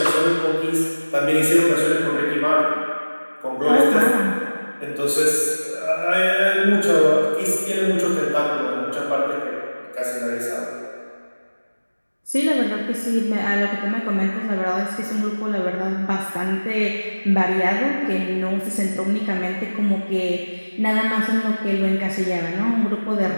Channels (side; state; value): both; inverted; correlation -1.00